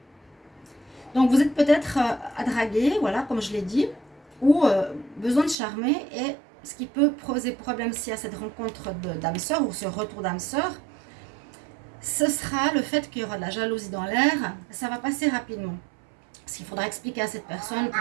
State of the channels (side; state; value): left; drops out; at 5.6 s